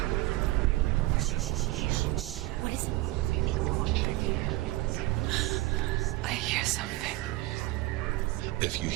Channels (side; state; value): left; quieter; 19.1 dB